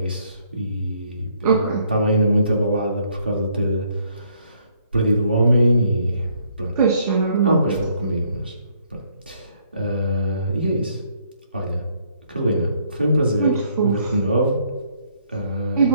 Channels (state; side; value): inverted; both; correlation -0.68